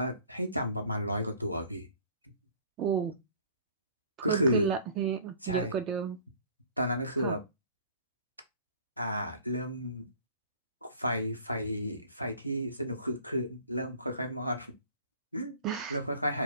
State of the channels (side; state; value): both; inverted; correlation -0.50